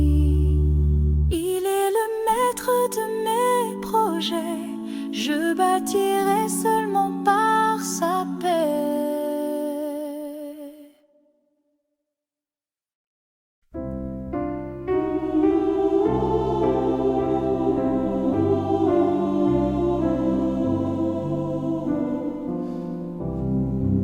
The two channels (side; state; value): both; identical; correlation 1.00